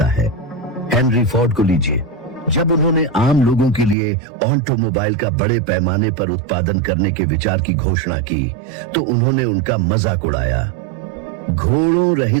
है। हेनरी फोर्ड को लीजिए। जब उन्होंने आम लोगों के लिए ऑटोमोबाइल का बड़े पैमाने पर उत्पादन करने के विचार की घोषणा की तो उन्होंने उनका मजाक उड़ाया। घोड़ों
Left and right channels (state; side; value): drops out; left; at 4.0 s